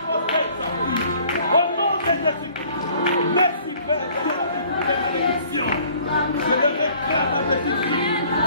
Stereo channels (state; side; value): inverted; both; correlation -0.55